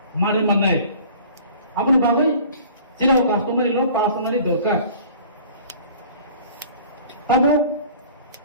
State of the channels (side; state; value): both; inverted; correlation -0.47